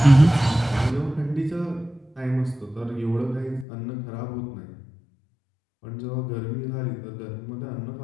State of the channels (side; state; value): right; drops out; at 3.7 s